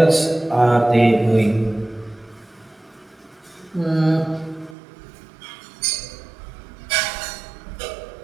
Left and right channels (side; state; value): left; drops out; at 4.8 s